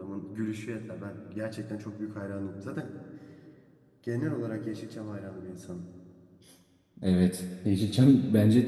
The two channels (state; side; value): identical; both; correlation 1.00